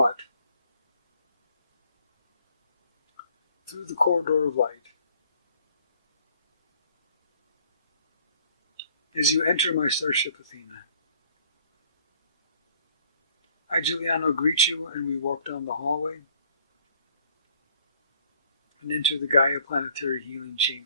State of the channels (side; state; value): both; inverted; correlation -0.59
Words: through the corridor of light. As you enter my starship Athena, I, Giuliano, greet you, and we walk down the hallway and enter the Gaia Planetary Healing